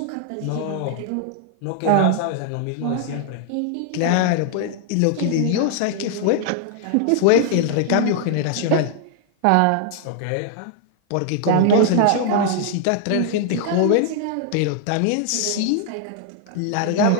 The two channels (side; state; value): both; different; correlation 0.00